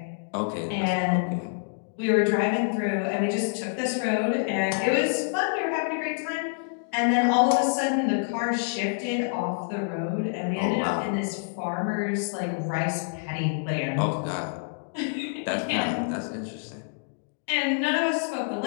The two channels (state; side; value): silent; right; digital silence